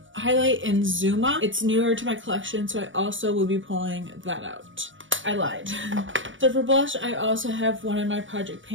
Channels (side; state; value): left; late; 0.56 ms